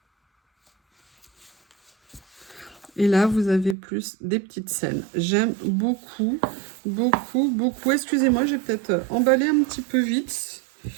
Et là, vous avez plus des petites scènes. J'aime beaucoup, beaucoup, beaucoup. Excusez-moi, j'ai peut-être emballé un petit peu vite.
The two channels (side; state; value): left; drops out; at 3.8 s